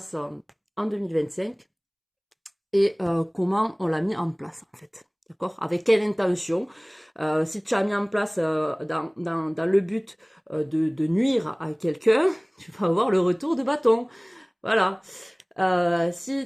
en 2025 et comment on l'a mis en place en fait. D'accord? Avec quelle intention? Si tu as mis en place dans le but de nuire à quelqu'un, tu vas avoir le retour de bâton. Voilà.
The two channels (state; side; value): identical; both; correlation 1.00